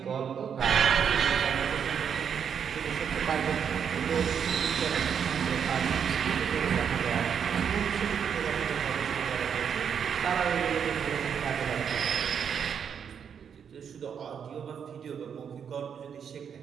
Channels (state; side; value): quieter; left; 7.5 dB